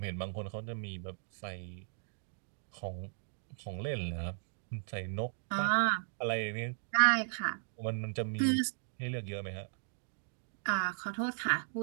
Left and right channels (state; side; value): silent; left; digital silence